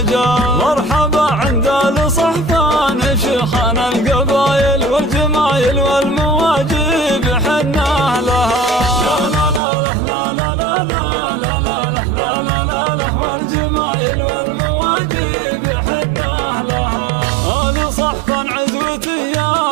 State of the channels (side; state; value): left; drops out; at 9.6 s